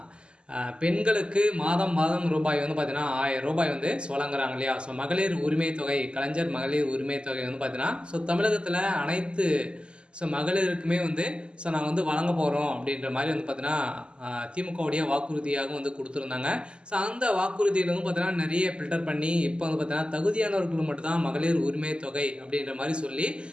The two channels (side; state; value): left; late; 0.051 ms